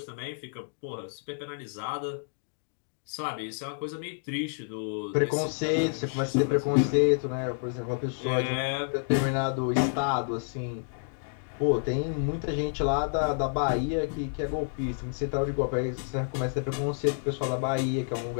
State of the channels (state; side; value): silent; right; digital silence